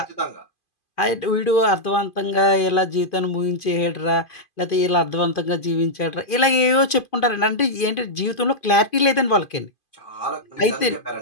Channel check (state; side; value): late; right; 2.5 ms